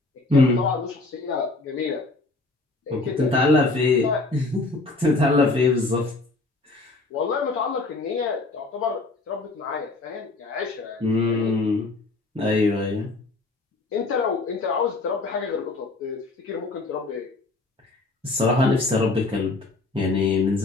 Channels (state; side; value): quieter; right; 3.3 dB